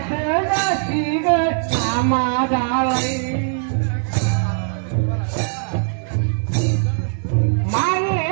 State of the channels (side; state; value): left; silent; 57 dB below the other